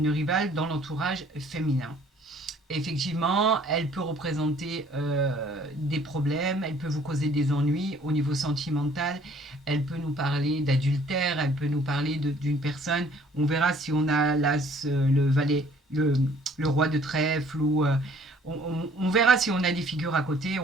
rivale dans l'entourage féminin. Effectivement, elle peut représenter des problèmes, elle peut vous causer des ennuis au niveau sentimental, elle peut nous parler d'adultère, elle peut nous parler d'une personne. On verra si on a l'as, le valet, le roi de trèfle, ou on verra si on a des figures à côté,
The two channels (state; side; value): normal; both; correlation 0.58